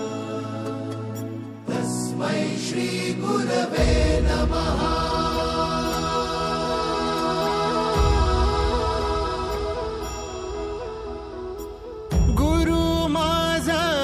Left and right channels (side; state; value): both; identical; correlation 1.00